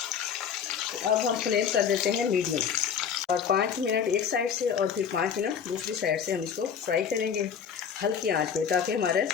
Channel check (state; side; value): quieter; right; 7.3 dB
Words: अब हम फ्लेम कर देते हैं मीडियम और 5 मिनट एक साइड से और फिर 5 मिनट दूसरी साइड से हम इसको फ्राई करेंगे हल्की आंच पे ताकि हमारे